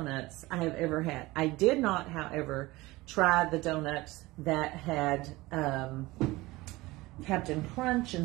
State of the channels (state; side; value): quieter; left; 20.3 dB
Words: I have ever had. I did not, however, try the donuts that had Captain Crunch